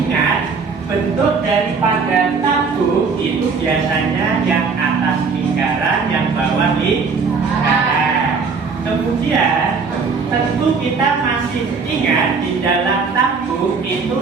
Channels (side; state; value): left; quieter; 5.0 dB